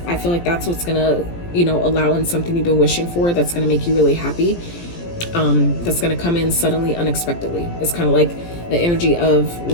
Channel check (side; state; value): right; late; 17 ms